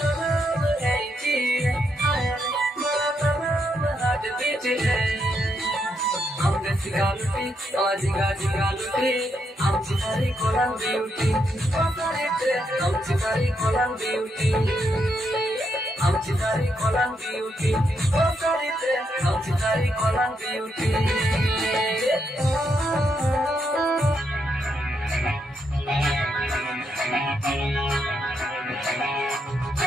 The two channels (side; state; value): both; normal; correlation 0.79